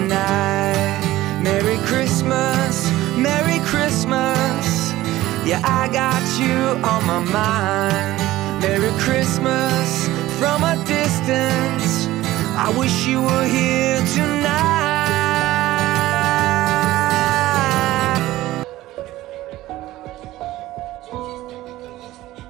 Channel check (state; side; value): quieter; left; 16.3 dB